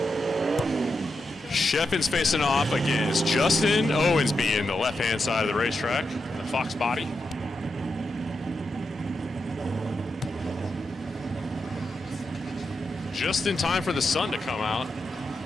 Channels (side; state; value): both; normal; correlation 0.86